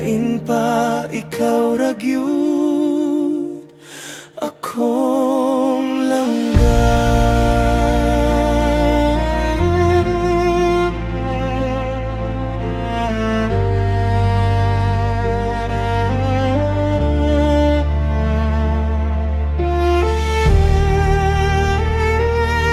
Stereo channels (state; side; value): identical; both; correlation 1.00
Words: pa, ikaw ra gyud akong langga.